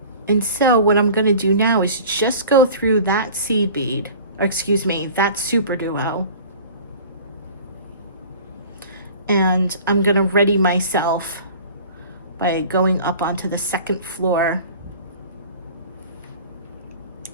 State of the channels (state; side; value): inverted; both; correlation -0.43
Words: And so what I'm going to do now is just go through that seed bead, or excuse me, that super duo. And I'm going to ready myself by going up onto the second floor